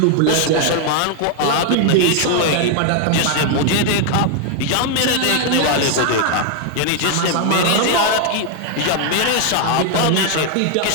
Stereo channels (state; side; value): different; both; correlation 0.00